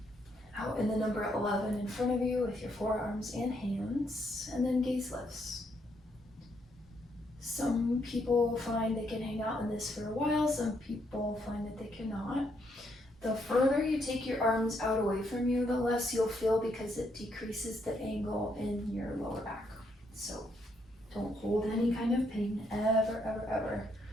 Out in the number 11 in front of you with your forearms and hands, and then gaze lifts. Some people find they can hang out in this for a while, some people find that they cannot. The further you take your arms out away from you, the less you'll feel because it decreases the angle in your lower back. So don't hold any kind of pain, ever, ever, ever.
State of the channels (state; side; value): normal; both; correlation 0.75